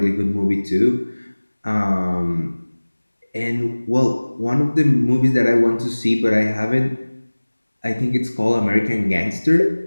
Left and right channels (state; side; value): inverted; both; correlation -1.00